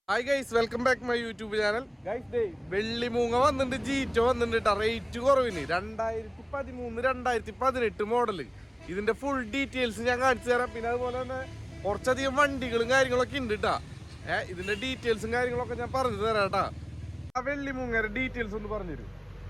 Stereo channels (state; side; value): identical; both; correlation 1.00